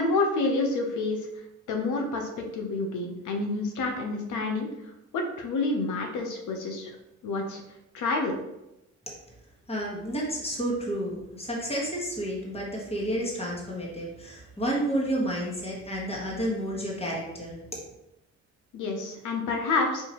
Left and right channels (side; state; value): both; normal; correlation 0.28